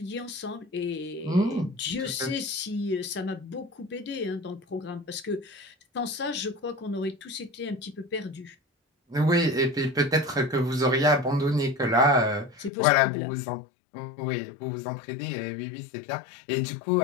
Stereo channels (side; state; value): right; drops out; at 12.7 s